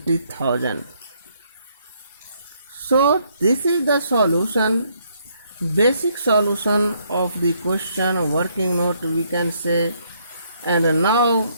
So this is the solution, basic solution of the question working note we can say. And now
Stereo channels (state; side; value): inverted; both; correlation -0.71